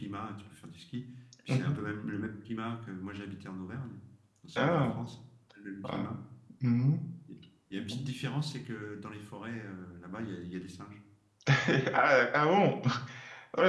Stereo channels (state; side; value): identical; both; correlation 1.00